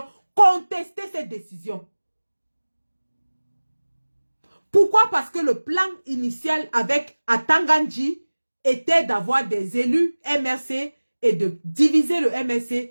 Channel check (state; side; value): inverted; both; correlation -1.00